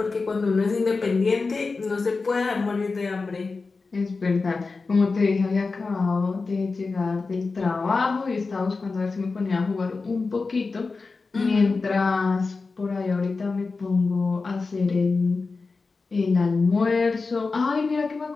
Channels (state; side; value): quieter; right; 4.1 dB